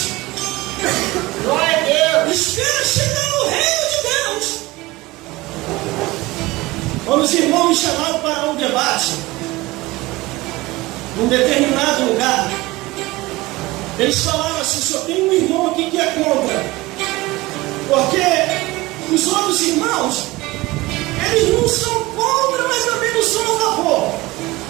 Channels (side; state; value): left; quieter; 20.4 dB